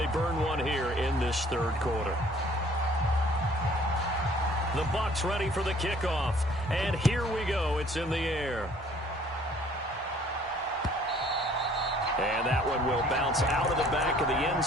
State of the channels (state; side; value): normal; both; correlation 0.57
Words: burn one here in this 3rd quarter. The Bucs ready for the kickoff. And here we go. It's in the air. And that one will bounce out of the back of the end